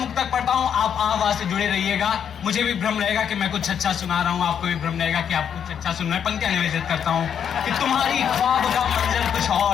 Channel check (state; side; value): quieter; right; 8.2 dB